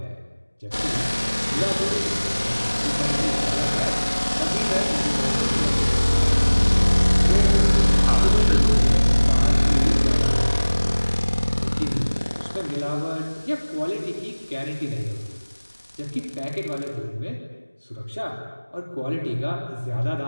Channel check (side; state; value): both; inverted; correlation -1.00